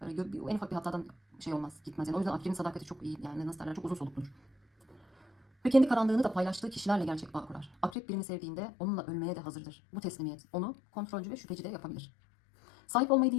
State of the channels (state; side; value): drops out; right; at 8.0 s